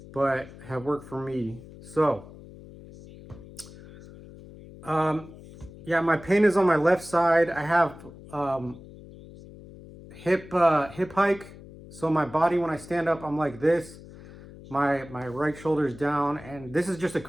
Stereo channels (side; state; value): left; noise; hum, 18 dB below the sound